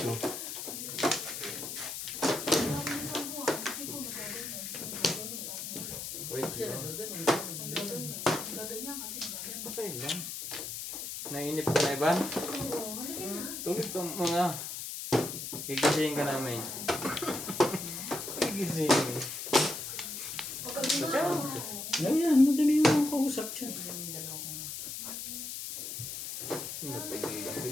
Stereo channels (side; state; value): left; noise; hiss, 6 dB below the sound